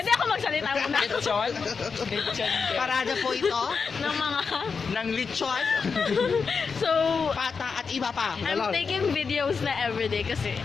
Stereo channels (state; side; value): quieter; right; 5.3 dB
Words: ako magsalita muna Lechon. Lechon. Parada po ito ng mga... ng lechon, So, pata at iba pa. I'm taking videos na everyday kasi